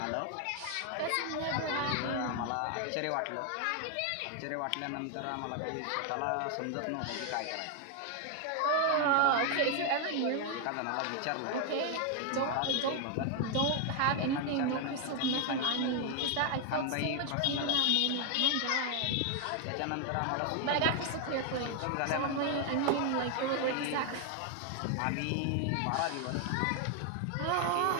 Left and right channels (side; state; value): both; different; correlation 0.00